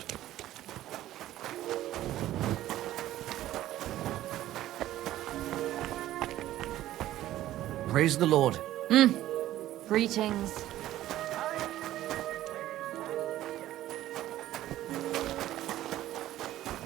Praise the Lord. Greetings.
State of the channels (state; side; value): quieter; left; 14.0 dB